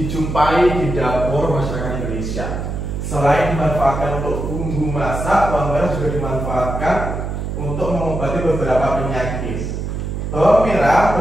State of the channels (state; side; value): noise; right; hum, 4 dB below the sound